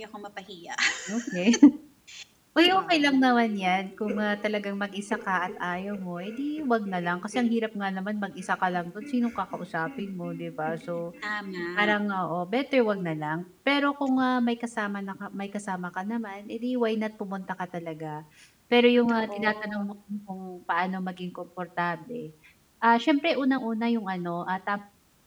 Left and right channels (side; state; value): both; identical; correlation 1.00